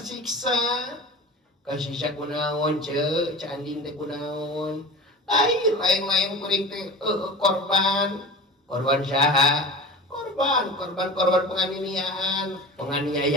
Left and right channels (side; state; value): both; normal; correlation 0.33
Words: kasisa kunaon ceu Andin teh kunaon lain kuring teh korban saha korban penganiayaan